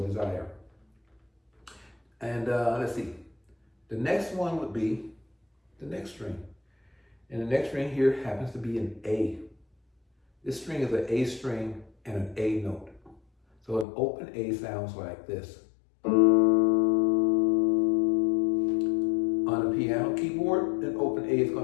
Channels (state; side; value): drops out; right; at 13.9 s